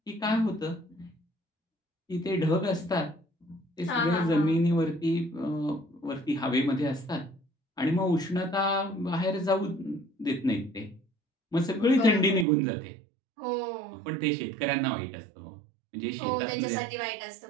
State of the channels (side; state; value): left; drops out; at 12.5 s